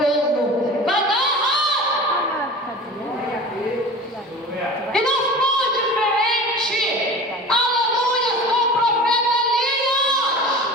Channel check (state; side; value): normal; both; correlation 0.37